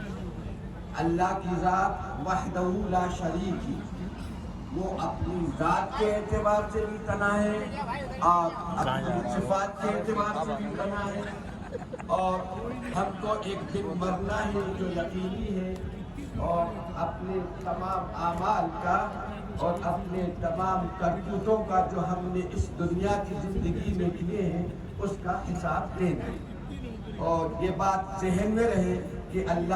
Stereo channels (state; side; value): identical; both; correlation 1.00